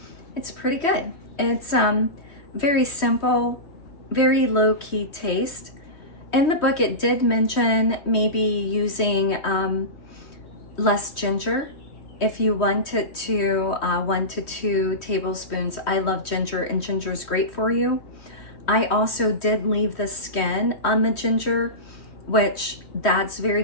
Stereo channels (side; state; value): right; late; 3.1 ms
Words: It's pretty good. It's very simple, very low-key taste. In the book, it did mention maybe using less ginger. If you wanted to, 1 to 2 tablespoons. I love ginger, and ginger is great for you. I also did leave the skin on the ginger, which that's very